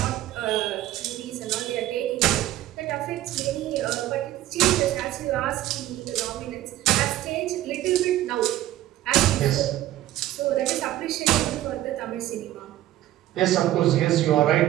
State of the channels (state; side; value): quieter; left; 14.4 dB